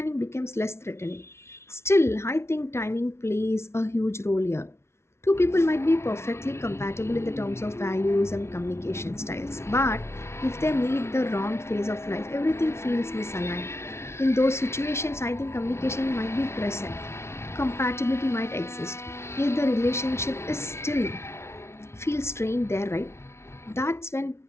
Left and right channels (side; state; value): right; late; 0.13 ms